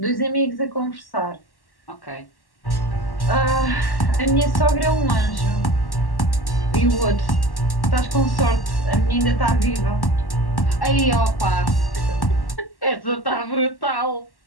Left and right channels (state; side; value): late; right; 1.1 ms